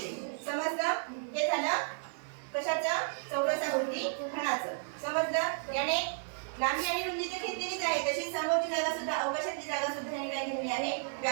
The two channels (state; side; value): silent; left; 56 dB below the other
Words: समजलं? हे झालं कशाचं? चौरसाकृती घनाचं. समजलं? याने लांबी आणि रुंदी तर घेतलेलीच आहे, तशी समोरची जागा सुद्धा, अवकाशातली जागा सुद्धा याने काय घेतली आहे?